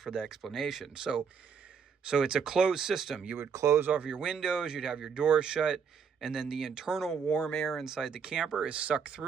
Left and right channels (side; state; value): left; quieter; 6.4 dB